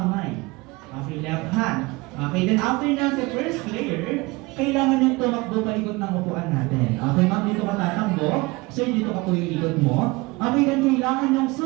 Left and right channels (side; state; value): left; quieter; 23.4 dB